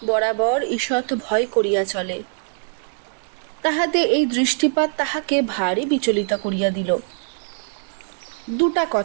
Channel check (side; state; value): left; silent; 63 dB below the other